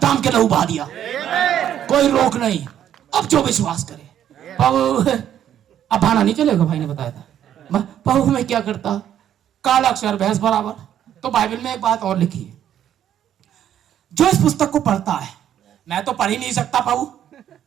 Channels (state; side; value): quieter; left; 10.4 dB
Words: दाम के लहू बहा दिया, कोई रोक नहीं। अब जो विश्वास करे। अब भाना नहीं चलेगा, भाई ने बताया था। पाऊ में क्या करता? काला अक्षर भैंस बराबर, तो बाइबल में एक बात और लिखी है, जो इस पुस्तक को पढ़ता है, मैं तो पढ़ ही नहीं सकता पाऊ,